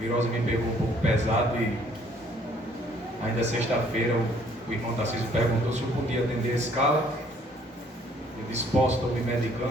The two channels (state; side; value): normal; both; correlation 0.61